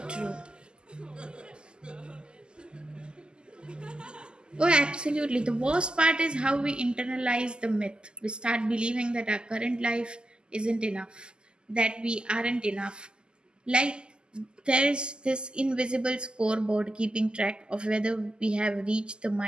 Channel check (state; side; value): late; left; 0.048 ms